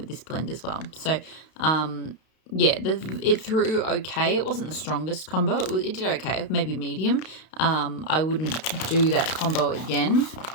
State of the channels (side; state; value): right; late; 32 ms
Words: this blend as well. So yeah, it threw okay. It wasn't the strongest combo. It did okay, maybe medium. I wouldn't do that combo again.